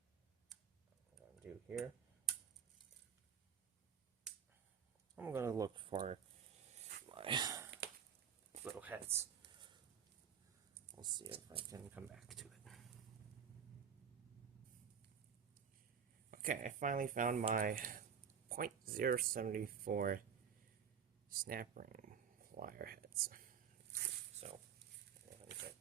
what I'm going to do here, I'm going to look for my little heads. We'll see if I can come back to it. Okay, I finally found my .074 snap ring plier heads. So, I'm going to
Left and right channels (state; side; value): quieter; left; 7.6 dB